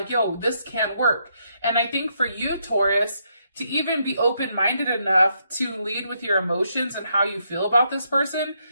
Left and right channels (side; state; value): both; inverted; correlation -0.76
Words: yo, this can work. And I think for you, Taurus, to even be open-minded enough to lead with your emotions and how you feel about this person,